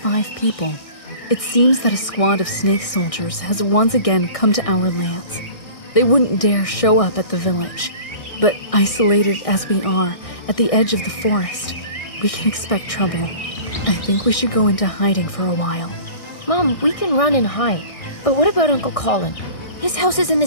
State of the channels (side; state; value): right; late; 1.6 ms